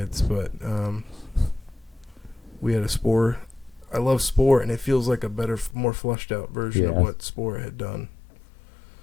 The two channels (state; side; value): drops out; right; at 5.8 s